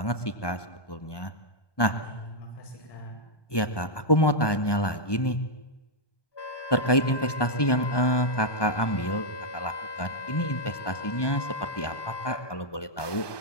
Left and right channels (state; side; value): late; right; 1.2 ms